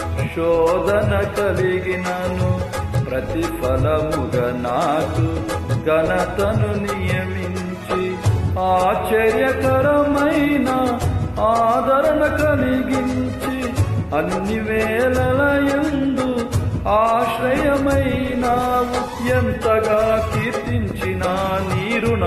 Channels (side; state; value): both; identical; correlation 1.00